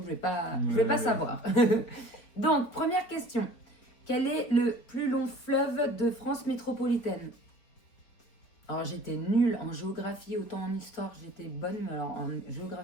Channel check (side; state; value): right; late; 4.3 ms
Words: je vais pas savoir. Donc, première question. Quel est le plus long fleuve de France métropolitaine? Alors, j'étais nulle en géographie, autant en histoire, j'étais bonne, mais alors en